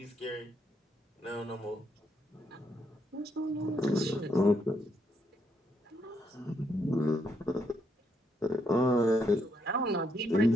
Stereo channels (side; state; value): both; normal; correlation 0.76